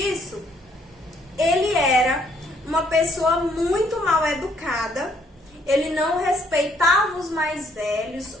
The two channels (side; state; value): both; normal; correlation 0.67